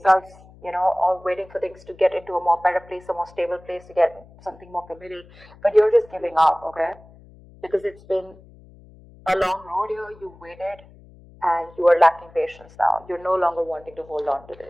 or waiting for things to get into a more better place, a more stable place, to get something more committed. But you're just giving up, okay? Because it's been a long road here. You waited and you are lacking patience now. You're no longer wanting to hold on to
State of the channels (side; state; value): left; noise; hum, 23 dB below the sound